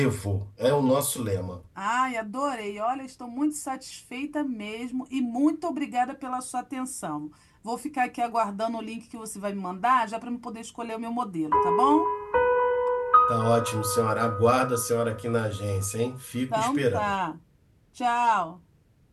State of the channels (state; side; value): identical; both; correlation 1.00